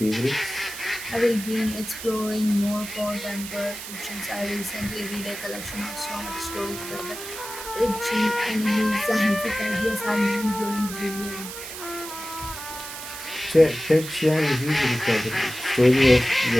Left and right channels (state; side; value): noise; right; hiss, 10 dB below the sound